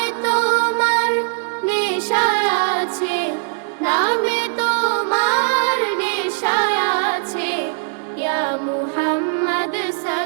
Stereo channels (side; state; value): left; silent; digital silence